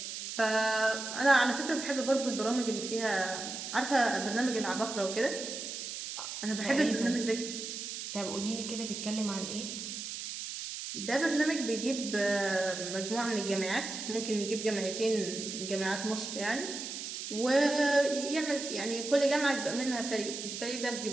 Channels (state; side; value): noise; right; hiss, 7 dB below the sound